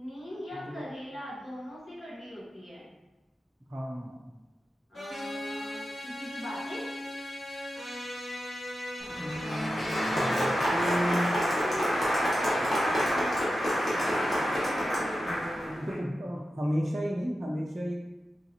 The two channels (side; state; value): both; normal; correlation 0.91